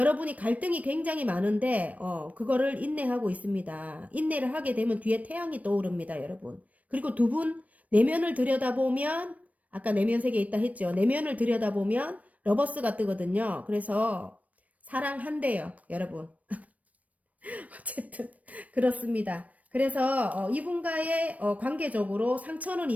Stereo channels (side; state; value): left; late; 0.069 ms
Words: 갈등이 굉장히 많은데 그거를 인내하고 있습니다. 인내를 하게 되면 뒤에 태양이 떠오릅니다, 여러분. 그리고 두 분 내면을 들여다보면 아까 내면 세계에 있다 했죠. 내면을 들여다보면 러버스가 뜨거든요. 그래서 사랑한대요, 여러분. 어쨌든 그렇습니다. 그래서 이분과의 관계적으로 상처는